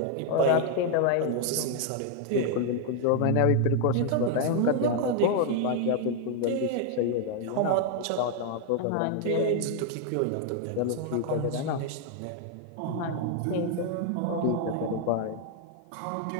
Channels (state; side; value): different; both; correlation 0.00